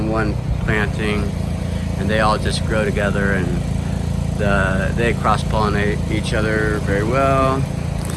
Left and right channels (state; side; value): identical; both; correlation 1.00